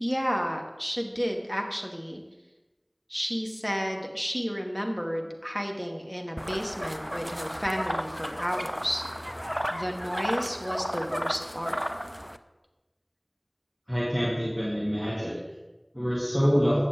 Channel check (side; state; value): both; identical; correlation 1.00